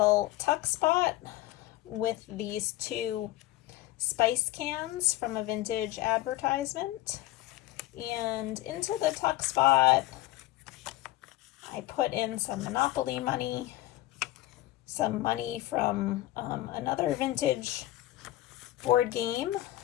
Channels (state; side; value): quieter; right; 16.1 dB